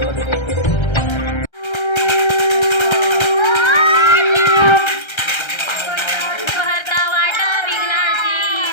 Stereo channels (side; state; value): right; late; 1.3 ms